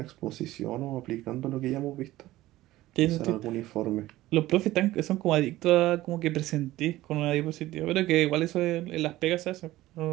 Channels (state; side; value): quieter; left; 16.4 dB